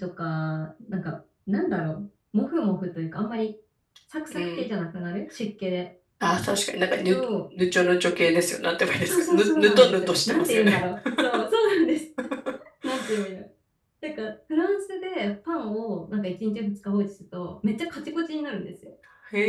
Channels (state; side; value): identical; both; correlation 1.00